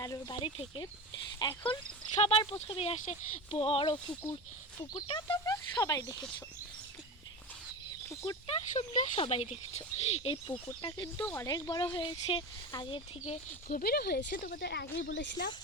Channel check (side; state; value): both; normal; correlation 0.26